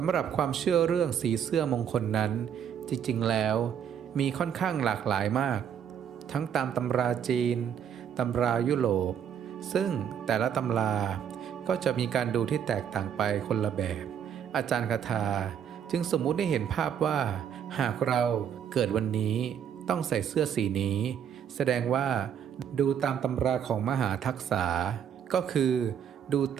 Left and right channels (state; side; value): quieter; left; 8.5 dB